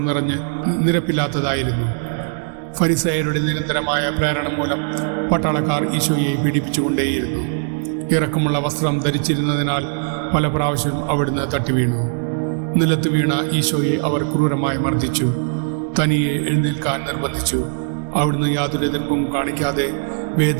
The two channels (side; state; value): left; silent; digital silence